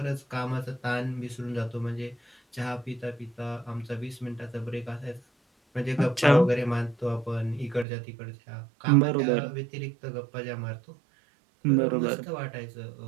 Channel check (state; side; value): drops out; left; at 7.9 s